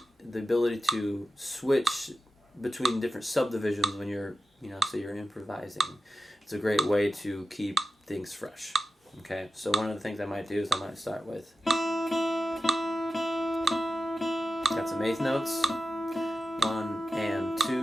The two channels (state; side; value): normal; both; correlation 0.90